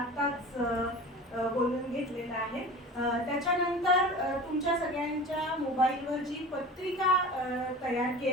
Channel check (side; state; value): both; normal; correlation 0.35